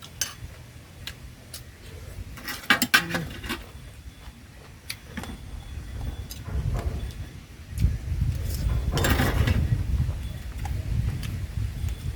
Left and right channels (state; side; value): identical; both; correlation 1.00